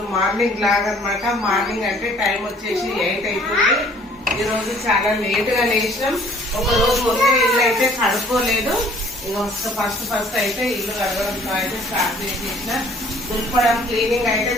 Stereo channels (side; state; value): both; normal; correlation 0.56